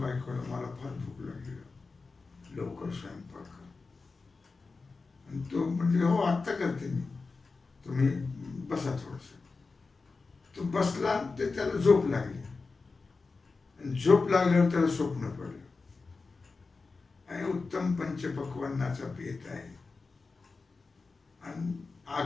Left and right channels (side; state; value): right; quieter; 4.1 dB